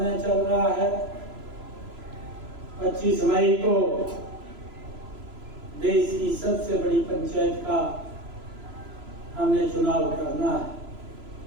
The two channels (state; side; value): late; left; 3.0 ms